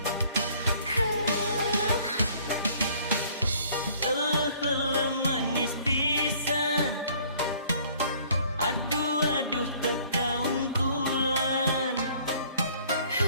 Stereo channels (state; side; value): inverted; both; correlation -0.57